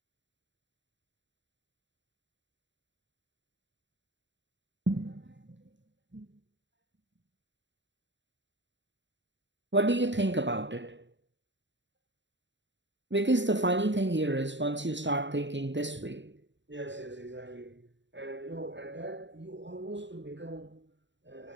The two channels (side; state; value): left; late; 0.53 ms